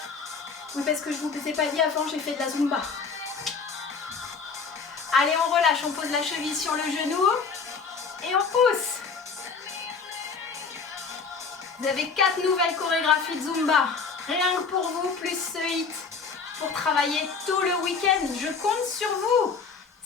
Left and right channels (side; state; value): right; quieter; 5.2 dB